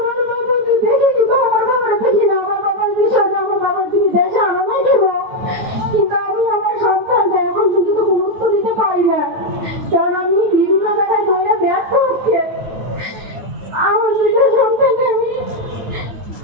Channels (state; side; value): late; left; 9.8 ms